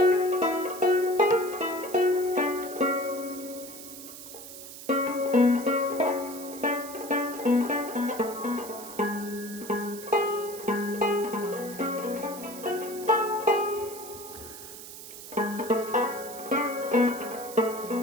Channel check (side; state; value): right; noise; hiss, 13 dB below the sound